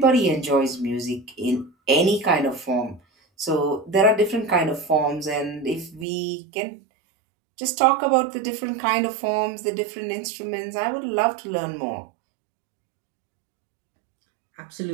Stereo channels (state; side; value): drops out; left; at 6.1 s